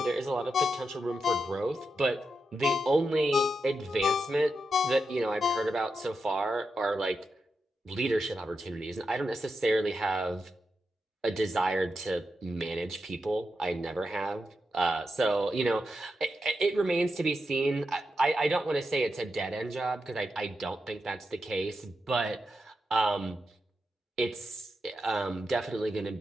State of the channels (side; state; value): both; normal; correlation 0.87